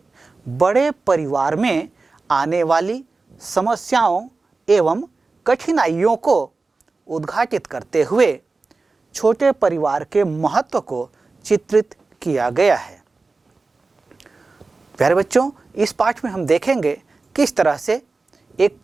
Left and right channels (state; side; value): quieter; left; 3.8 dB